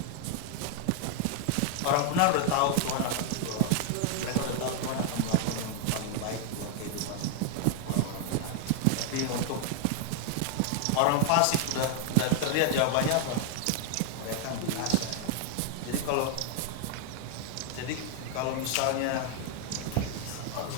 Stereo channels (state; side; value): different; both; correlation 0.00